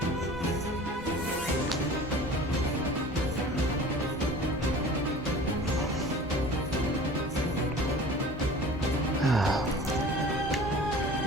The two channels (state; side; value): normal; both; correlation 0.42